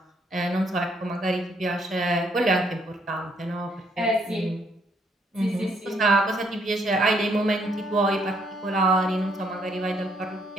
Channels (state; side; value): normal; both; correlation 0.70